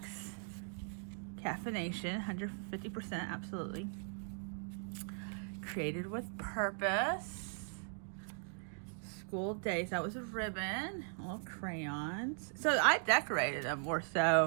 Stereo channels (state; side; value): silent; left; 52 dB below the other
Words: Caffeination, 150%, absolutely. Created with purpose. School days. That was a ribbon. Little crayons. So I decorated them more